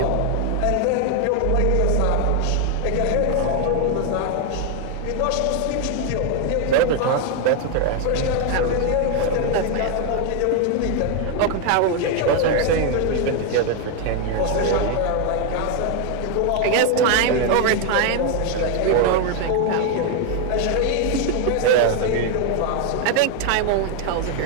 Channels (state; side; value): different; both; correlation 0.00